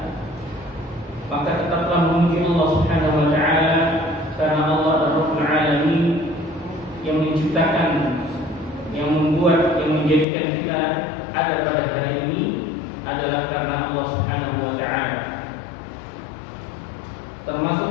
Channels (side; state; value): right; drops out; at 10.2 s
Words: Maka tetaplah memuji Allah Subhanahu wa taala, karena Allah adalah Rabbul Alamin yang menciptakan, yang membuat, yang menjadikan kita ada pada hari ini adalah karena Allah Subhanahu wa taala.